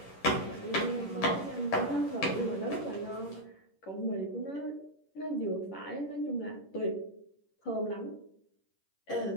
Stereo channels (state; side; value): late; right; 10 ms